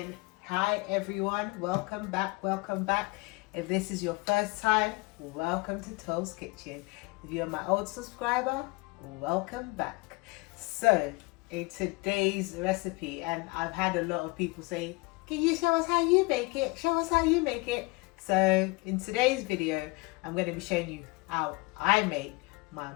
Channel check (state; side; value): quieter; right; 26.0 dB